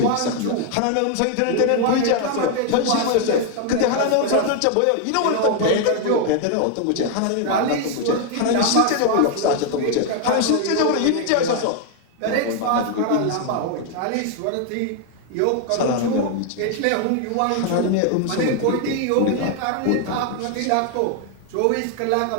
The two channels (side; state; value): both; different; correlation 0.00